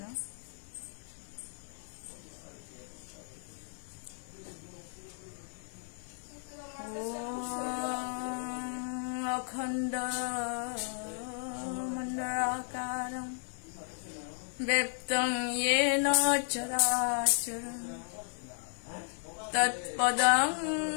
অখণ্ড মণ্ডলাকারং ব্যপ্তং येन চরাচরং তৎপদং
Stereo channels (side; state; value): right; silent; 55 dB below the other